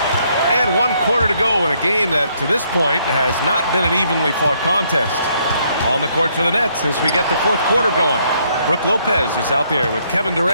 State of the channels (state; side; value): inverted; both; correlation -0.71